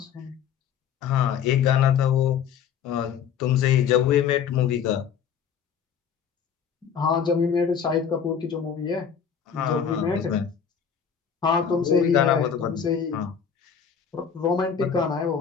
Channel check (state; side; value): quieter; right; 7.5 dB